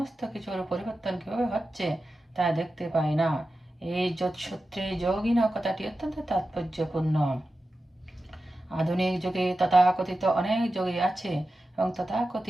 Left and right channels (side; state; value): both; normal; correlation 0.93